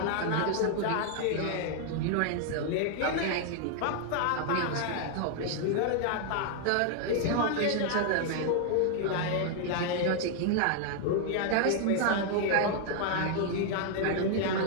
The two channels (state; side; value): different; both; correlation 0.00